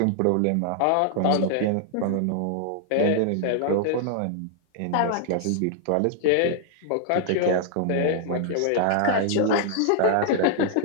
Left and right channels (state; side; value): different; both; correlation -0.01